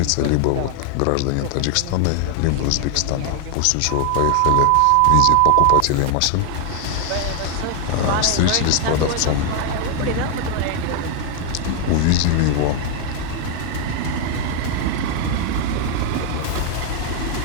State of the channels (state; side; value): different; both; correlation 0.00